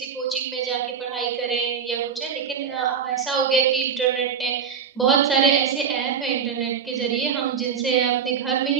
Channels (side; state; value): left; quieter; 7.0 dB